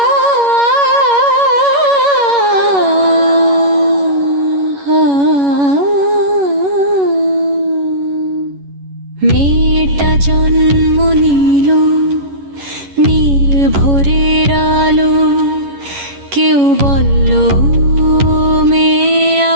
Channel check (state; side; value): late; left; 11 ms